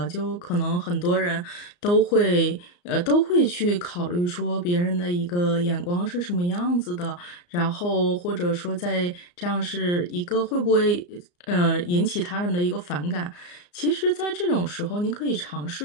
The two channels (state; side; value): late; right; 34 ms